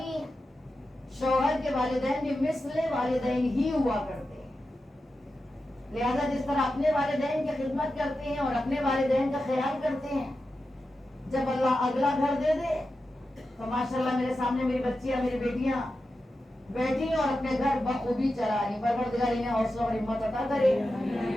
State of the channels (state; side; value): normal; both; correlation 0.91